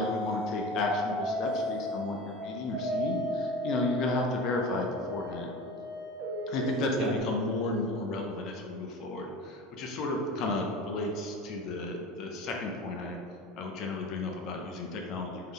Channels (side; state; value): both; normal; correlation 0.34